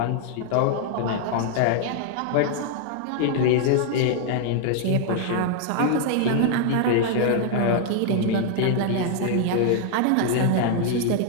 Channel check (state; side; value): different; both; correlation 0.00